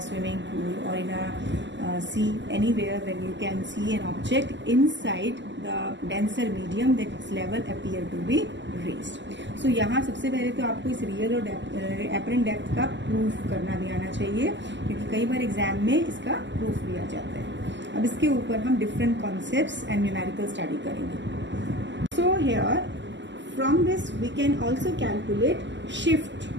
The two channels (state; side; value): late; left; 0.53 ms